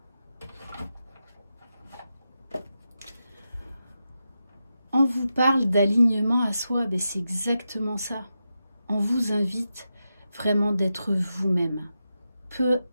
On vous parle d'alignement à soi, ben c'est exactement ça. On vous invite vraiment d'être vous-même. Peu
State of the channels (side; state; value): both; inverted; correlation -0.89